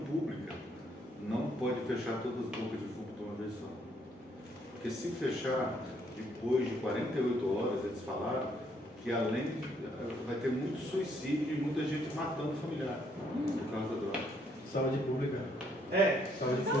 não pode fechar todas as bocas de fumo de uma vez só. Porque se fechar depois de 48 horas, eles falaram que além vai ter muito suicídio e muita gente matando o familiar por causa da droga. Saúde pública. Saúde Não,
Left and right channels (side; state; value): both; normal; correlation 0.69